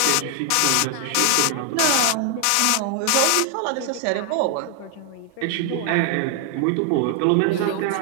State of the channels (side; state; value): both; different; correlation 0.00